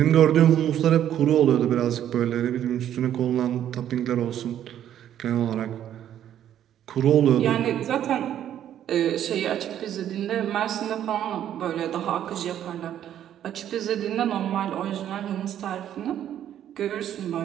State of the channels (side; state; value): left; quieter; 10.7 dB